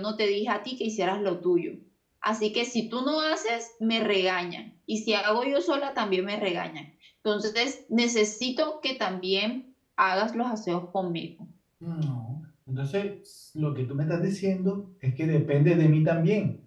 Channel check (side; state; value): both; identical; correlation 1.00